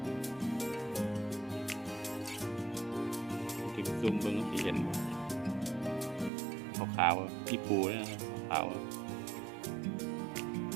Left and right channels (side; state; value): left; drops out; at 6.3 s